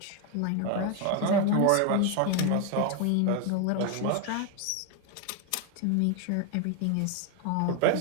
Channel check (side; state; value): both; different; correlation 0.01